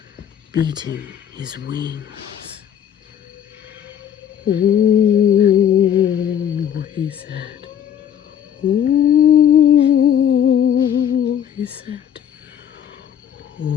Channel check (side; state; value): right; quieter; 9.3 dB